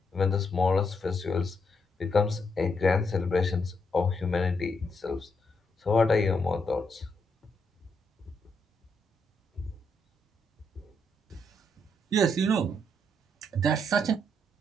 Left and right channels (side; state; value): both; normal; correlation 0.78